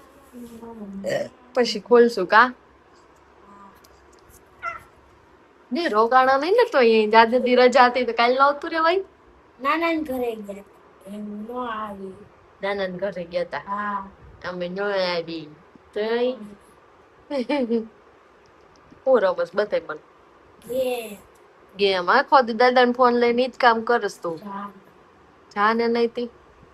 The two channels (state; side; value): identical; both; correlation 1.00